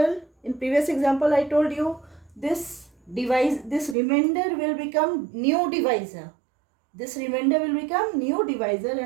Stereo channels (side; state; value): left; drops out; at 4.0 s